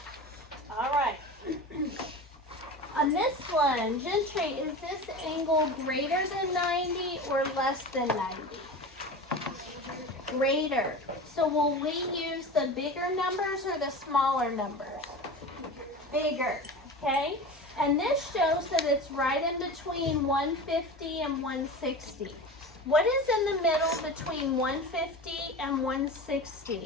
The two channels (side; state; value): both; normal; correlation 0.31